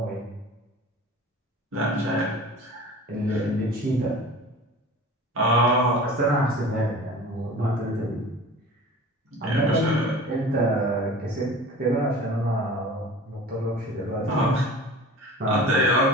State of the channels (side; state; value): both; normal; correlation 0.39